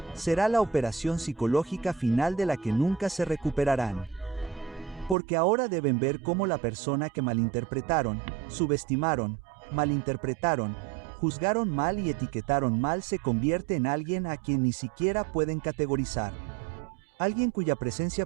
será la operación psicológica final de la que nunca se recuperarán. Porque ahora deben ver cómo la persona que malinterpretaron, subestimaron, malinterpretaron, juzgaron mal y etiquetaron mal se convierte en alguien a quien ni siquiera pueden categorizar. Alguien cuya presencia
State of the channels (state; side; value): drops out; left; at 5.2 s